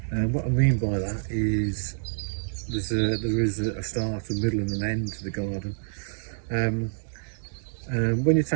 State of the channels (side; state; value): left; silent; digital silence